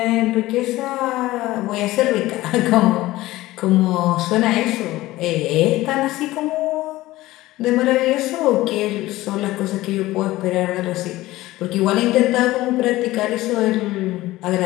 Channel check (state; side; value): quieter; right; 17.5 dB